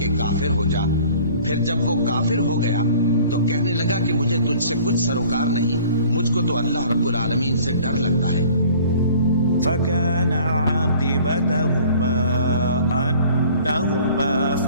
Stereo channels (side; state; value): both; inverted; correlation -0.50